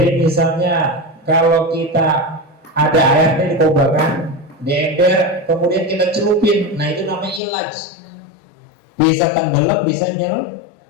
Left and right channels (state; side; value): drops out; right; at 7.4 s